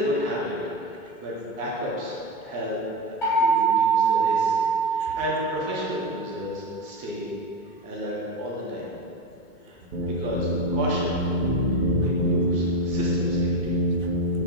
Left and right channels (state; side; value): late; right; 2.2 ms